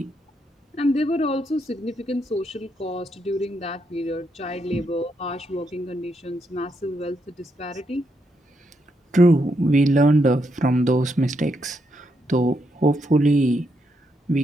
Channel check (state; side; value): normal; both; correlation 0.79